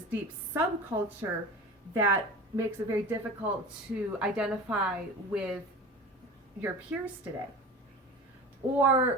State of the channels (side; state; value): both; normal; correlation 0.34